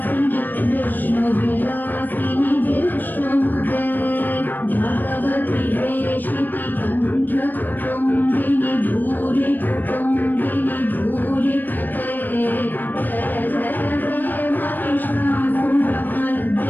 विष्णुविलासिनि विष्णुमुते भगवति वेशिति कण्ठकुटुम्बिनि भूरि कुटुम्बिनि भूरि कृते जय जय जय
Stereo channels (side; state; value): right; late; 0.089 ms